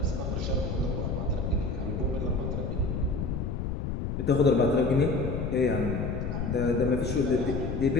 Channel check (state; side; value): noise; left; rumble, 3 dB below the sound